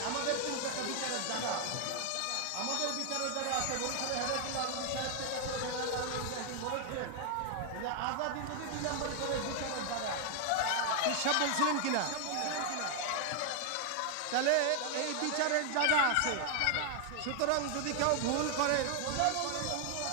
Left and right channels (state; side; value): different; both; correlation 0.00